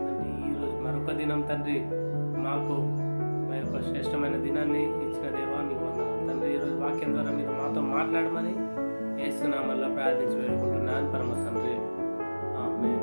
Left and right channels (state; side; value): inverted; both; correlation -1.00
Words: తండ్రి ఈరోజు మరొక దినం తండ్రి, మాకు మా యొక్క శ్రేష్టమైన దినాన్ని ఇచ్చిన దేవా, మీకు వందనాలు తండ్రి. ఈరోజు వాక్యం ద్వారా మీరు మాతో మాట్లాడమని యేసు నామములో ప్రార్థించి వేడుకుంటున్నాను పరమ తండ్రి,